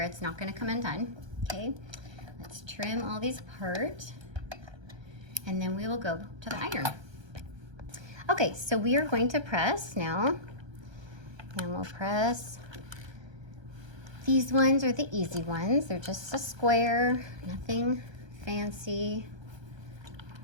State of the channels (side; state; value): left; late; 1.3 ms